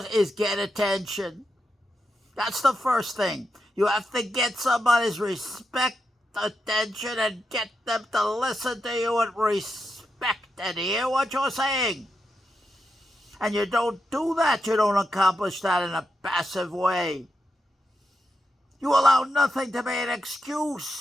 is get attention. That's the first thing. You have to get somebody's respect, attention, and get them to listen to you with respect and hear what you're saying. And you don't do that, you don't accomplish that in a passive way. You allow nothing to be an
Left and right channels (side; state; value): both; normal; correlation 0.86